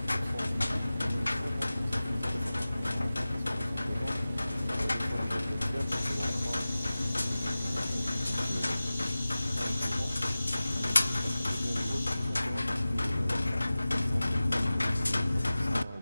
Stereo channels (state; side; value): inverted; both; correlation -0.97